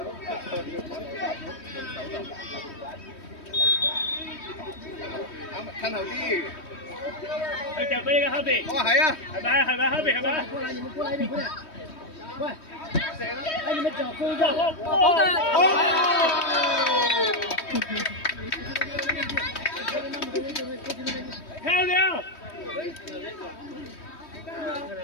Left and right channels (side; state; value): right; late; 3.2 ms